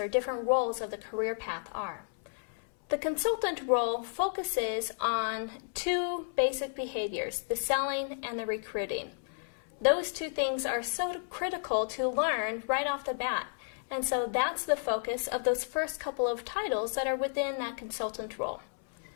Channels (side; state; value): right; silent; 56 dB below the other